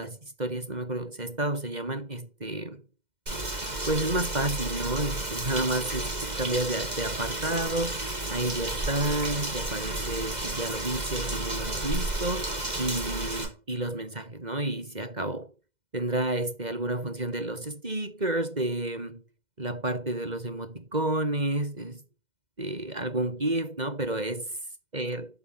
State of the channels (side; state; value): left; late; 2.0 ms